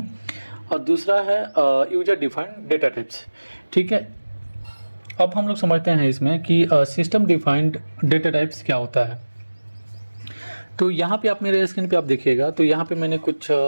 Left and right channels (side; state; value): both; inverted; correlation -1.00